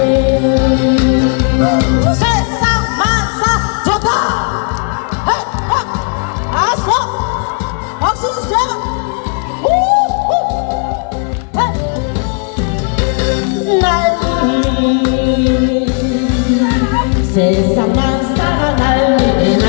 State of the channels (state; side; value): quieter; right; 39.8 dB